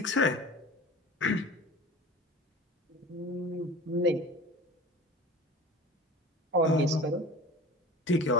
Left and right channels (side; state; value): both; normal; correlation 0.38